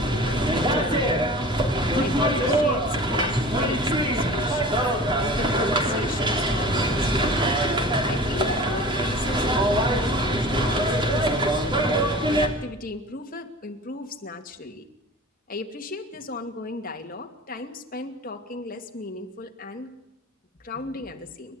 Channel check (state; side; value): normal; both; correlation 0.39